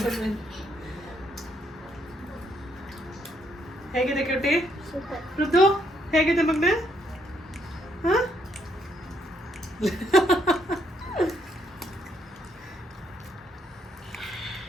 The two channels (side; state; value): both; normal; correlation 0.72